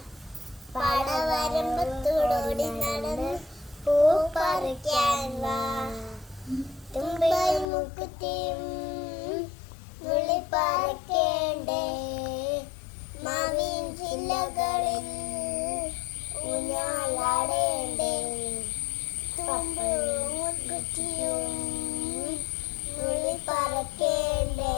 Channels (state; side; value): drops out; right; at 7.7 s